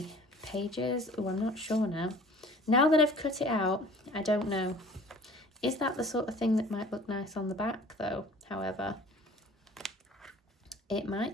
pages. Oh, I'm not sure now. Now that I've cut it out, I don't know. Is that the sort of thing that might look nice on the back though? However, it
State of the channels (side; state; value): both; normal; correlation 0.48